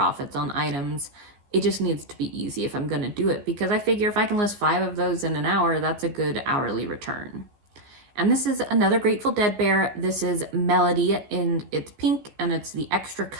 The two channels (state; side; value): late; left; 15 ms